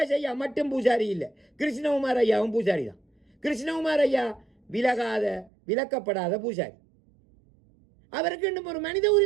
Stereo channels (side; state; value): left; drops out; at 5.5 s